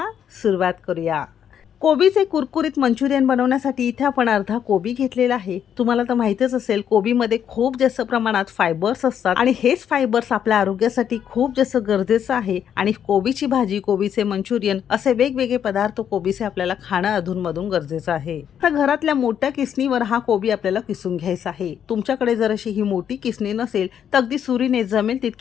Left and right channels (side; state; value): right; quieter; 8.9 dB